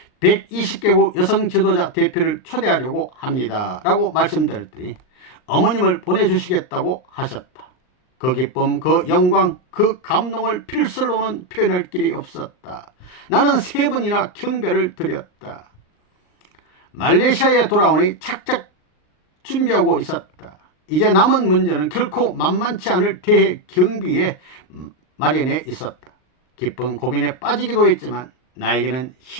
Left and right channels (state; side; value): late; right; 39 ms